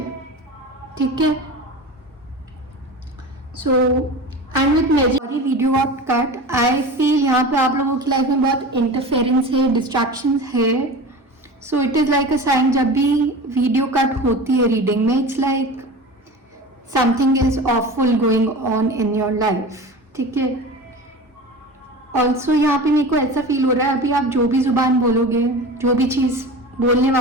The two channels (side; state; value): both; normal; correlation 0.32